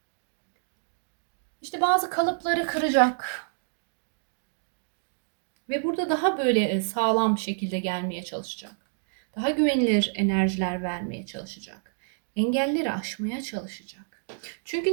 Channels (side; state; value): left; silent; digital silence